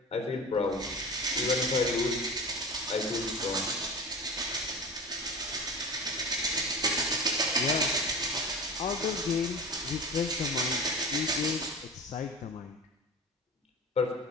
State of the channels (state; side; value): normal; both; correlation 0.31